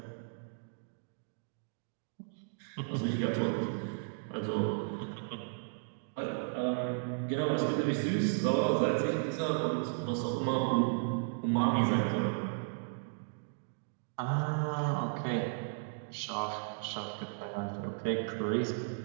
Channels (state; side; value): silent; left; digital silence